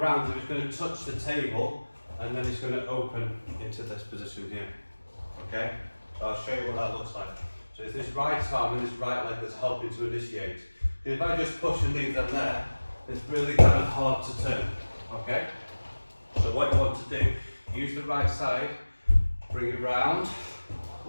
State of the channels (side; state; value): both; inverted; correlation -1.00